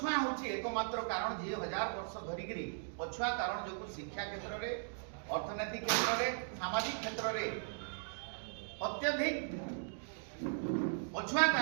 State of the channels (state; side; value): silent; left; digital silence